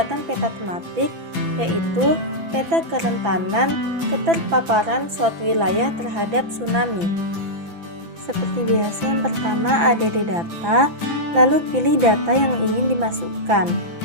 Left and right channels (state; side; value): late; left; 6.0 ms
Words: peta tematik, yaitu peta kerentanan keterpaparan suatu wilayah terhadap tsunami. Seperti biasa, yang pertama ADD data, lalu pilih data yang ingin dimasukkan.